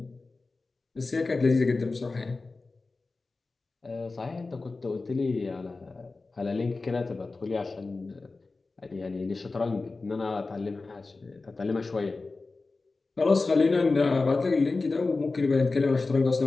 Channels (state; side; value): quieter; right; 3.7 dB